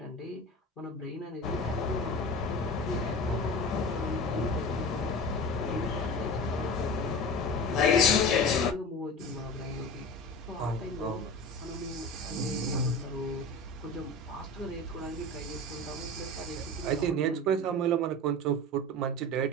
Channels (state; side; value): normal; both; correlation 0.32